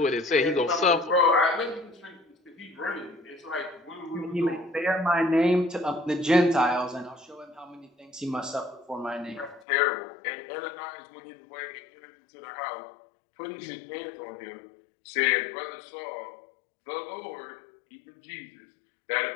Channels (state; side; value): drops out; right; at 9.7 s